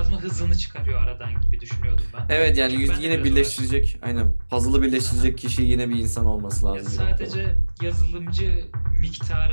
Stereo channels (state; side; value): inverted; both; correlation -1.00